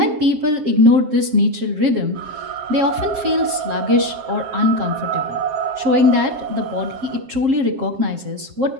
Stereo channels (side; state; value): left; late; 7.4 ms